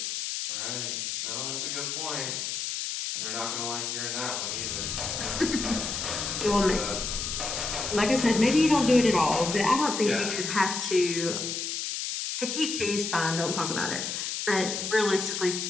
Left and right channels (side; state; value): left; noise; hiss, 3 dB below the sound